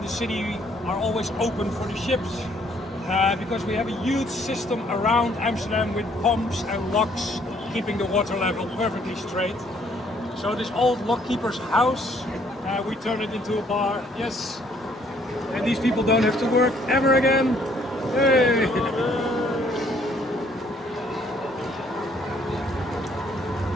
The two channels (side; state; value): both; normal; correlation 0.64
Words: the city are always open for the ships. Because we have a huge system around Amsterdam with pumps and locks keeping the water level perfectly straight. So this old lockkeeper's house, we turned it into a bar, yes. And these people don't have to work ever again. Hey!